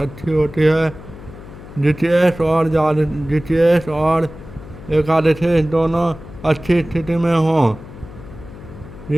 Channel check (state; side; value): noise; left; hum, 16 dB below the sound